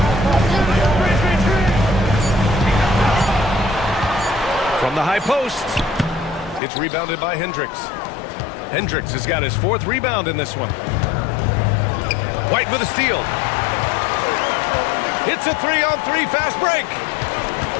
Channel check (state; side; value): drops out; right; at 6.6 s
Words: From the high post. It's rebounded by Hendricks. Hendricks has got his 4th rebound in this one. White with a steal. It's a 3-on-3 fast break.